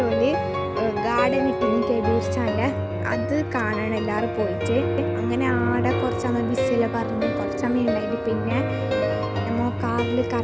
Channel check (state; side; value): identical; both; correlation 1.00